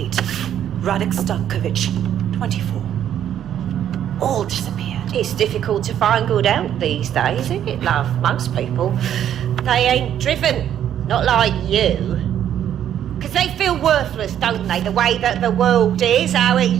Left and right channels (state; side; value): quieter; left; 10.3 dB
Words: Radek Stankovic, 24. All disappeared. It's difficult to find good help these days, isn't it, love? Most people, they ain't driven. Not like you. Because they feel worthless, don't they? The way that the world is, how it